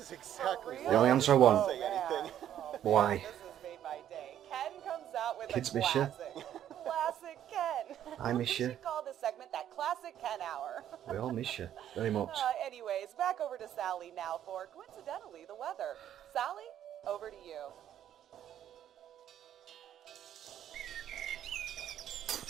exactly For why The only I answer I didn't want. say anything. Oh, Why? This is made my day. Ken comes out with Kids a miss ya. classic. Classic Ken. I miss We ya. should call this segment that Classic Ken Hour. We all miss you very much. Anyways, back over to Sally now for, coincidentally, the weather. Sally, over to you.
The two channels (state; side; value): quieter; left; 10.7 dB